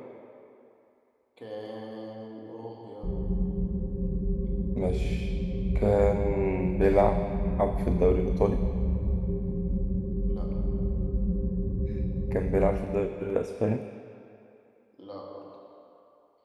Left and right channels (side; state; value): both; identical; correlation 1.00